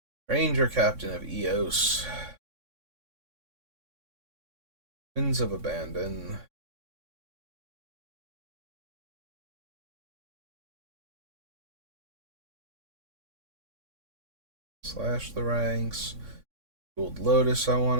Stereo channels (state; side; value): late; left; 3.6 ms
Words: Ranger Captain of Eos, Winds of Abandon, Slash the Ranks, Gold Lotus I